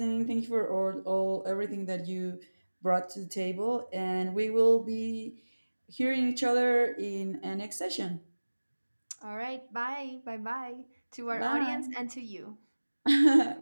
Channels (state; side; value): inverted; both; correlation -1.00